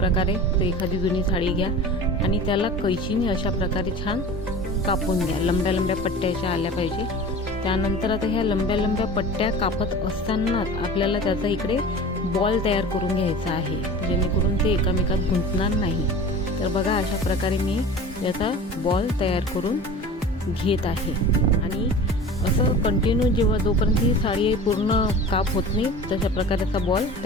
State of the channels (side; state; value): both; normal; correlation 0.37